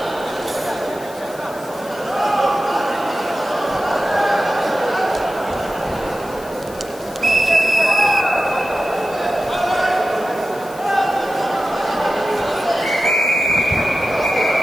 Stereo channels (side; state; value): left; noise; hiss, 20 dB below the sound